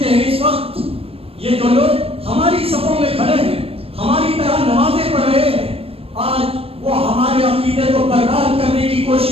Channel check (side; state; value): left; late; 0.28 ms